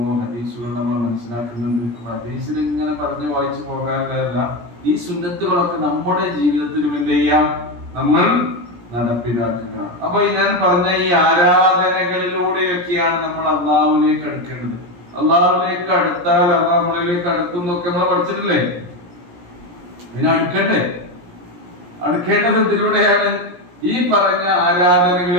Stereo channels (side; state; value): left; late; 17 ms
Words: ഹദീസുകൾ നമ്മൾ മനസ്സിലാക്കുന്നുണ്ട്. ഹദീസിൽ ഇങ്ങനെ പറഞ്ഞു വായിച്ചു പോകാനല്ല, ഈ സുന്നത്തുകളൊക്കെ നമ്മുടെ ജീവിതത്തിലും എന്ത് ചെയ്യാം? നമ്മൾ നടപ്പിലാക്കുക. അപ്പൊ ഞാൻ പറഞ്ഞ ഈ ആരാധനകളിലൂടെയൊക്കെയാണ് നമ്മൾ അള്ളാഹുവിലേക്ക് അടുക്കേണ്ടത്. അള്ളാഹുവിലേക്ക് അടുത്താൽ അള്ളാഹ് നമ്മളിലേക്ക് അടുക്കുന്നൊക്കെ നമ്മൾ പഠിച്ചിട്ടില്ലേ? ഇതിനെ അടുക്കണ്ടേ? അടുക്കേണ്ടത് ഇതിലൂടെയാണ്, ഈ പറഞ്ഞ